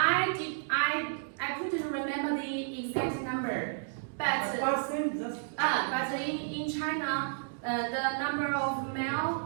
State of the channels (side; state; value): left; silent; digital silence